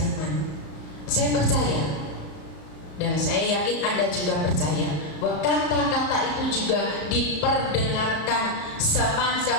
Saya percaya, dan saya yakin Anda juga percaya, bahwa kata-kata itu juga diperdengarkan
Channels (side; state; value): right; late; 34 ms